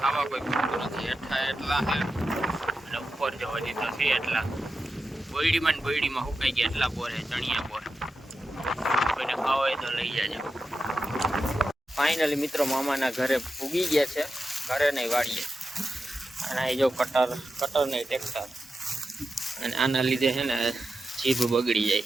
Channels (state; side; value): normal; both; correlation 0.90